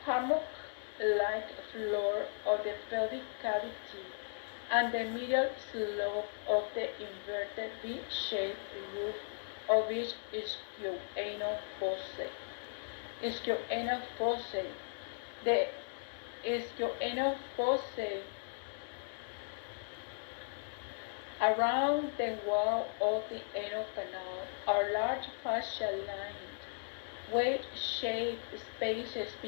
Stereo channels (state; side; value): silent; right; digital silence